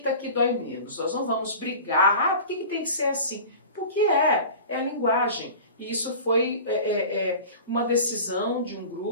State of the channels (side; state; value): both; inverted; correlation -0.37